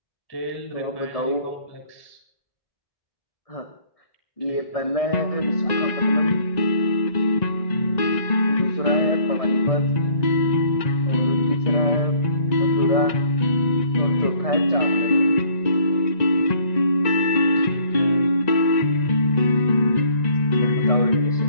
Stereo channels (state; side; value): late; right; 1.9 ms